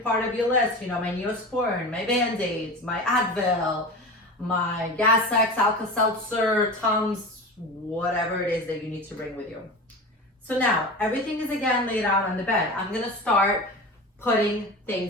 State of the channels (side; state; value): both; normal; correlation 0.30